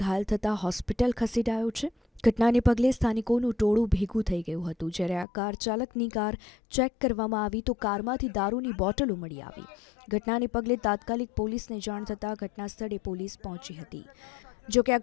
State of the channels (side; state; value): right; drops out; at 5.2 s